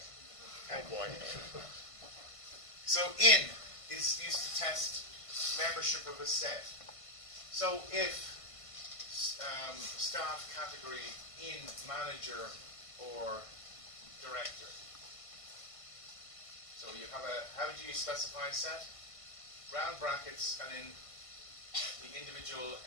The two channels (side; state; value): right; late; 1.5 ms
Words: Oh boy. So in is used to test membership of a set. So if staff category in manager or director. So you have a, how do you specify a set? Round brackets and in the individual